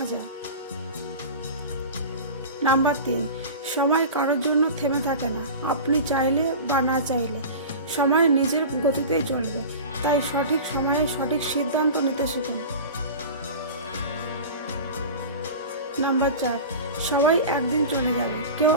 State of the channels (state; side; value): inverted; both; correlation -0.33